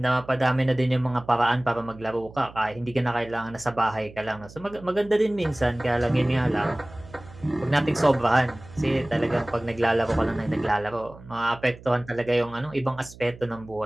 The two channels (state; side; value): noise; right; hum, 19 dB below the sound